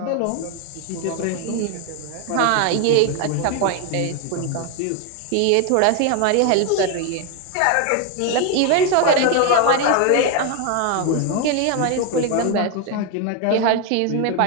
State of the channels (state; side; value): different; both; correlation 0.01